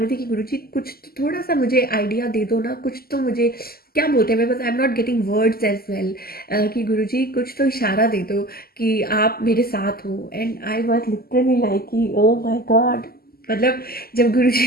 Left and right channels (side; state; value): right; late; 0.44 ms